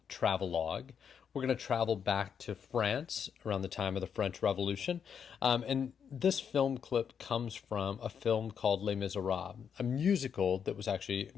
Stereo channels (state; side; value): quieter; right; 7.4 dB